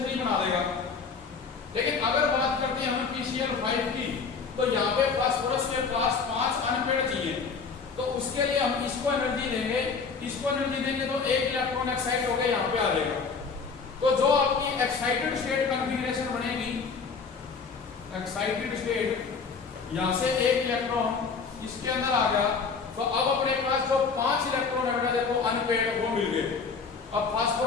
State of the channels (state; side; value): quieter; right; 5.2 dB